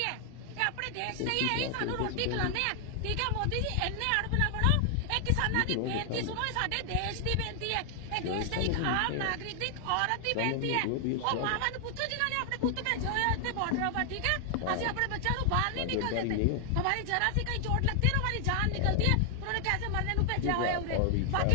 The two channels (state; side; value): different; both; correlation 0.00